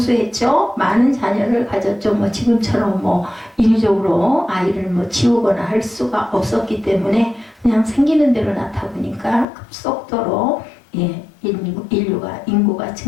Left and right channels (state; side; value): drops out; right; at 9.5 s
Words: 많은 자녀를 가졌죠. 지금처럼 인위적으로 아이를 지우거나 할 수가 없었기 때문에 그냥 생기는 대로 낳다 보니까 급속도로 인구가